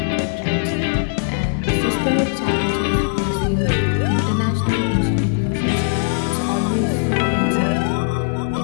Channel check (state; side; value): silent; right; digital silence